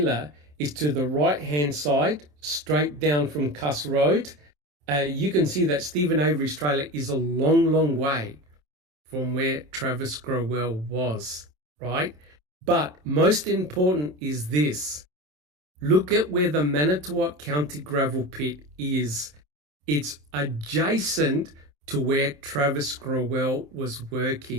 is to the right-hand side straight down from Cuss Road, you can see that Stephen Avery's trailer is a long, long way from where Travis Growell was, right? But most important is this. Look at where the Manitowoc County gravel pit is. It's adjacent to where Travis Growell was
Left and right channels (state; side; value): late; left; 27 ms